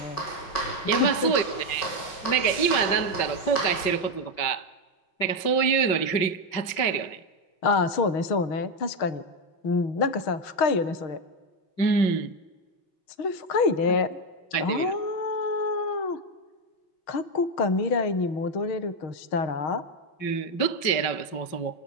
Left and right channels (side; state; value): right; late; 5.3 ms